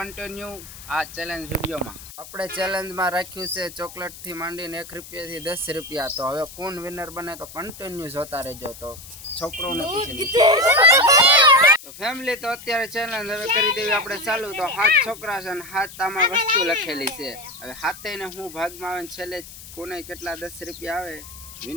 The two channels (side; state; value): left; noise; hiss, 16 dB below the sound